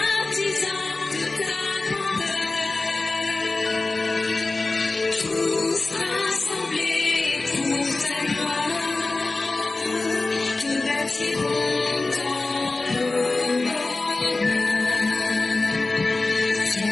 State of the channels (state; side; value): quieter; right; 3.3 dB